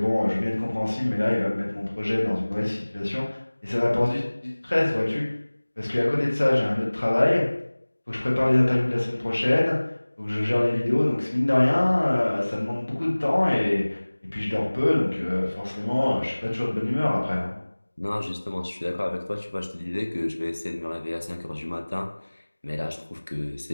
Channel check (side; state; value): both; inverted; correlation -1.00